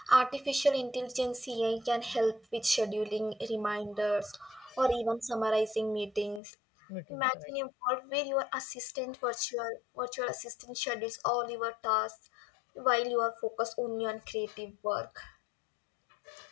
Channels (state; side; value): drops out; right; at 6.4 s